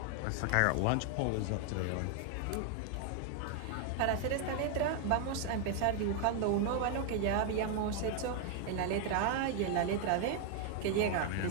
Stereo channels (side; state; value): both; different; correlation 0.00